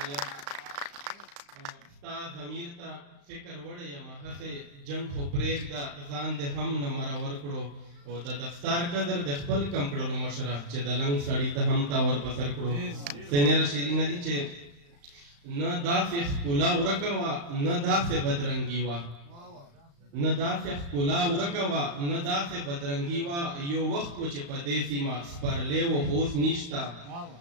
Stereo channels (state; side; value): late; left; 35 ms